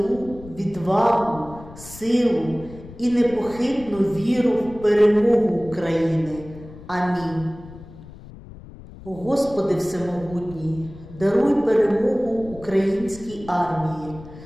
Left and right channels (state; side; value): noise; left; rumble, 17 dB below the sound